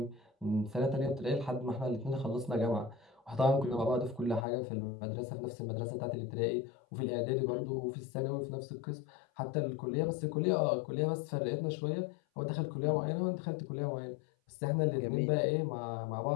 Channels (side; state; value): right; drops out; at 4.5 s